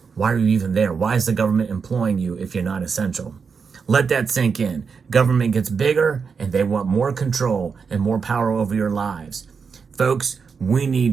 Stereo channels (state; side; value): quieter; left; 5.7 dB